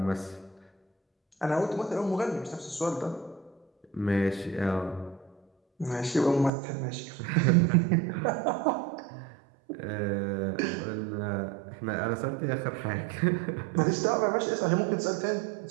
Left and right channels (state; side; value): drops out; left; at 6.5 s